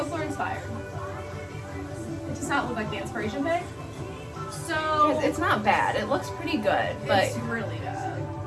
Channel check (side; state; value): both; identical; correlation 1.00